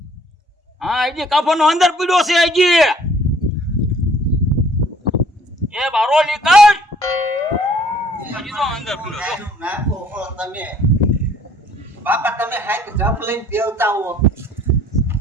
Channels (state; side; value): normal; both; correlation 0.59